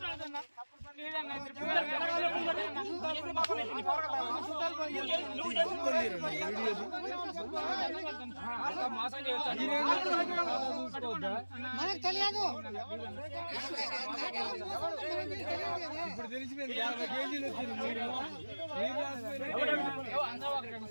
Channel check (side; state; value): both; inverted; correlation -1.00